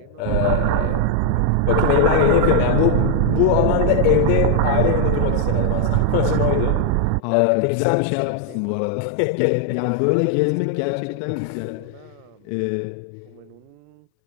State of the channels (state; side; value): different; both; correlation 0.00